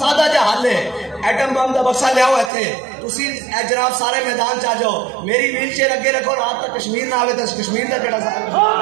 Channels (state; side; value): drops out; left; at 2.5 s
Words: جا حل ہے ایٹم بم دا بکسا لے آؤ ایتھے تسی اے جناب سارے میدان چا جاؤ میری ویل چیئر اگے رکھو رات تک کشمیر نہ آوے تو کشمیر دا کیڑا